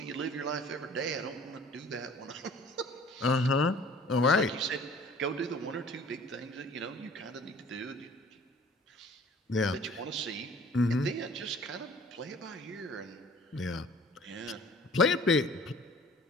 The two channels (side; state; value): both; normal; correlation 0.50